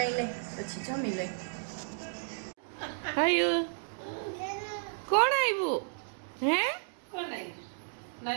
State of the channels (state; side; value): silent; left; digital silence